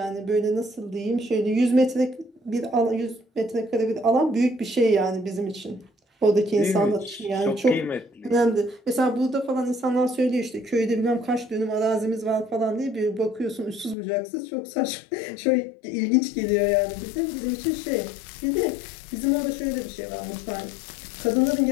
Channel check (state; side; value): drops out; right; at 14.0 s